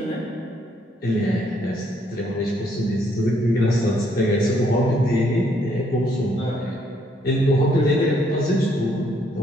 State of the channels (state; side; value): normal; both; correlation 0.69